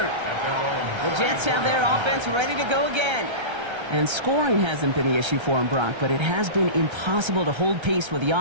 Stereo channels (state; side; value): late; left; 1.3 ms